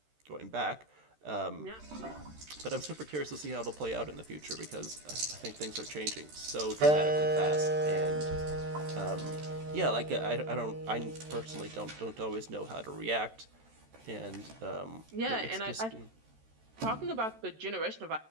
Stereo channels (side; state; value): left; late; 13 ms